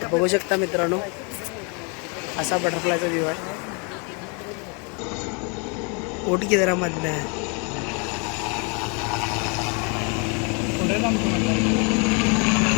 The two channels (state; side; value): quieter; right; 33.7 dB